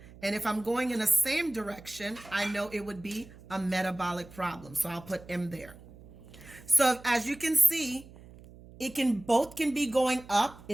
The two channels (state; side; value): noise; right; hum, 20 dB below the sound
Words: And if I'm going in the same direction, I know it would be a metabolic problem. So I'll put M there. So as you can see, both can be going up.